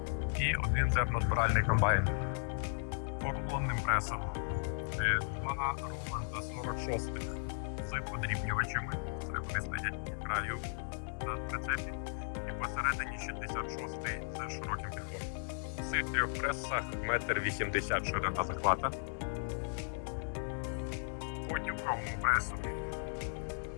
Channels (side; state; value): right; silent; digital silence